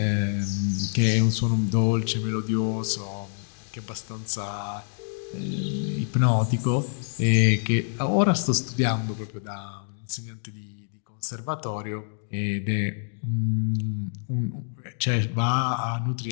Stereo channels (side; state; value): right; silent; 60 dB below the other